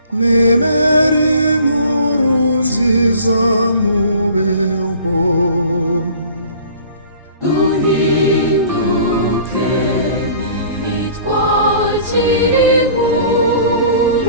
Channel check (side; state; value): both; inverted; correlation -0.48